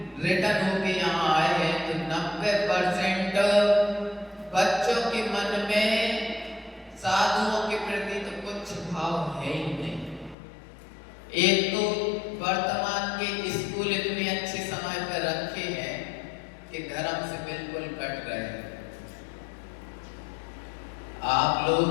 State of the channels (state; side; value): drops out; right; at 10.4 s